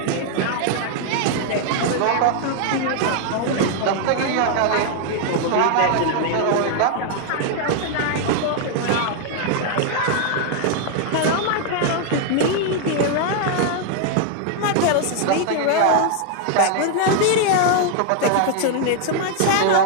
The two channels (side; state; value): both; different; correlation 0.00